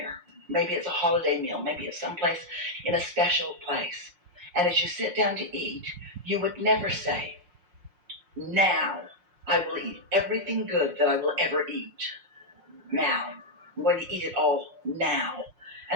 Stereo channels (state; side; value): late; left; 5.6 ms